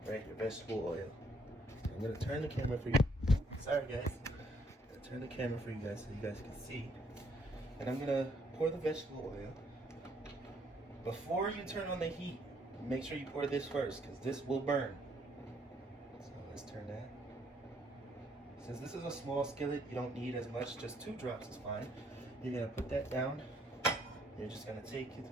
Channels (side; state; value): both; normal; correlation 0.68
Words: right? Your vegetable oil. I'm gonna turn the camera for you. Sorry guys. I'm gonna turn the camera for you guys so you guys can see. and I'm gonna pour the vegetable oil. Before you turn on the heat, make sure you pour this first, because this will burn. So let's turn that. Since this is a small skillet, you don't need as much, just 2 drops is fine. You're gonna put that down. You're just gonna take it to